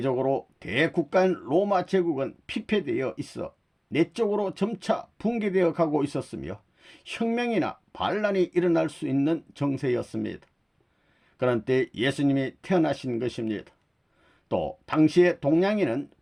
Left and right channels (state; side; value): identical; both; correlation 1.00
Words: 대국가인 로마 제국은 피폐되어 있어 내적으로 점차 붕괴되어 가고 있었으며 혁명이나 반란이 일어날 수 있는 정세였습니다. 그런 때 예수님이 태어나신 것입니다. 또 당시의 동양에는